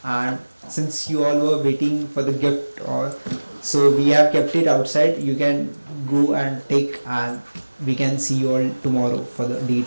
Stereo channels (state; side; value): inverted; both; correlation -1.00